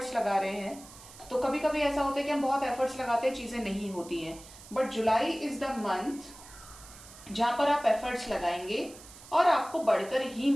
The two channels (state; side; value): noise; right; hiss, 19 dB below the sound